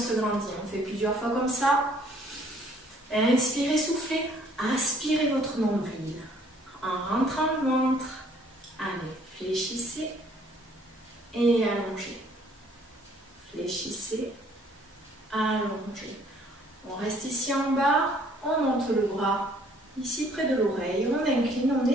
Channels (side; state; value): both; normal; correlation 0.61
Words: grandit. On fait plusieurs fois comme ça. Inspirez, soufflez. Aspirez votre nombril. En rentrant le ventre. Allez, fléchissez et allongez. Fléchissez, allongez. On reste ici en bas, on monte le bras ici près de l'oreille, on incline, on